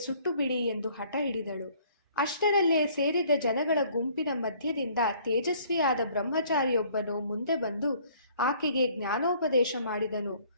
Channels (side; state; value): both; inverted; correlation -0.58